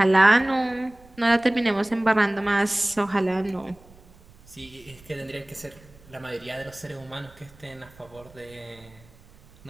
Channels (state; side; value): noise; right; rumble, 25 dB below the sound